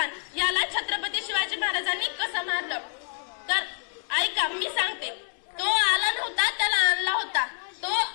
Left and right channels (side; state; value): right; silent; 60 dB below the other